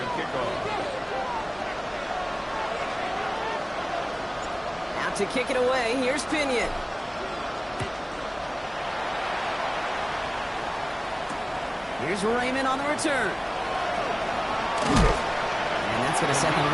kick off. Out to kick it away, here's Pinion. Here's Raymond on the return. And that's going to set them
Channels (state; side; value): identical; both; correlation 1.00